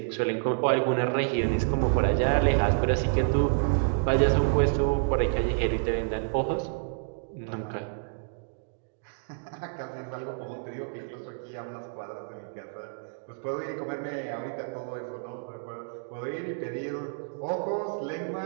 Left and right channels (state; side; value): silent; left; digital silence